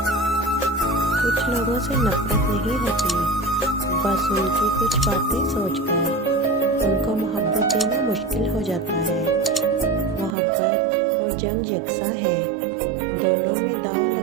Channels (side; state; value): left; drops out; at 10.4 s